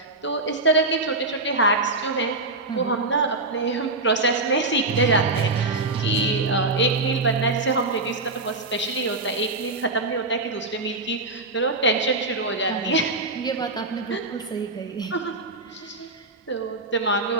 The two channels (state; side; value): quieter; left; 3.1 dB